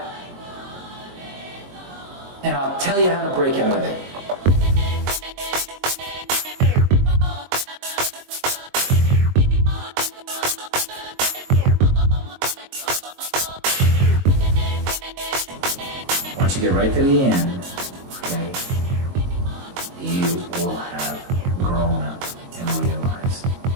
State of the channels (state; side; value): late; left; 22 ms